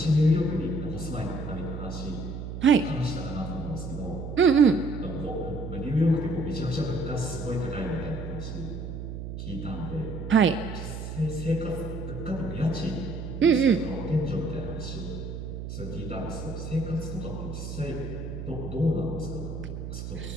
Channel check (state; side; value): noise; right; hum, 7 dB below the sound